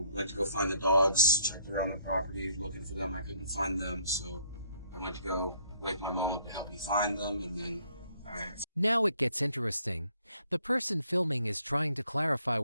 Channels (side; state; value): both; inverted; correlation -0.66